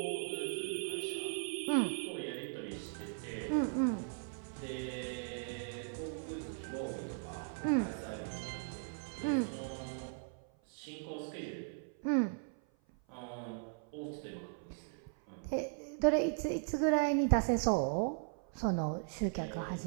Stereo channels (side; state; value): left; silent; 52 dB below the other